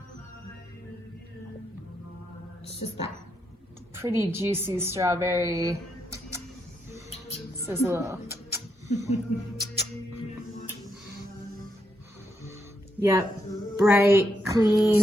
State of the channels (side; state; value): both; normal; correlation 0.80